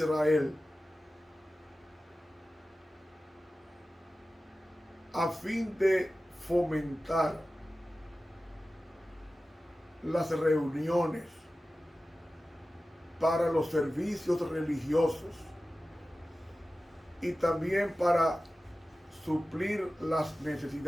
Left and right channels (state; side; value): normal; both; correlation 0.95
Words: a fin de fomentar las reuniones para los servicios religiosos y también para suplir las